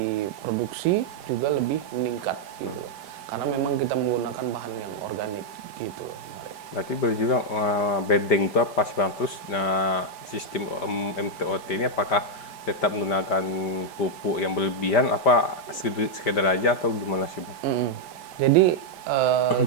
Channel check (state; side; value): late; right; 5.1 ms